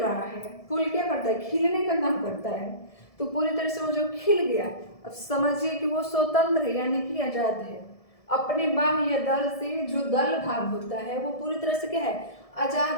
है, फूल क्या करता है, खिलने का काम करता है। तो पूरी तरह से वो जो खिल गया, अब समझिए कि वो स्वतंत्र है, यानी कि आजाद है। अपने बाह्य दल से जो दल भाग होता है वो पूरी तरह से क्या है,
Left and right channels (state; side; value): late; right; 1.7 ms